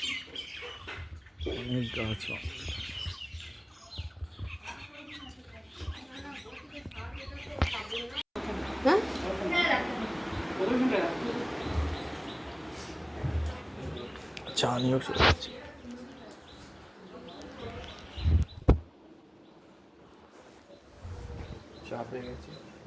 অনেক গাছ। চা নিয়েও চলে যাচ্ছি। চা পেয়ে গেছি।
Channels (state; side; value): identical; both; correlation 1.00